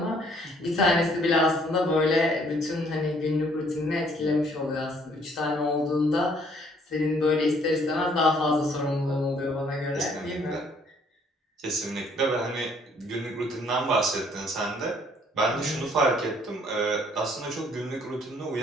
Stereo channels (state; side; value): normal; both; correlation 0.62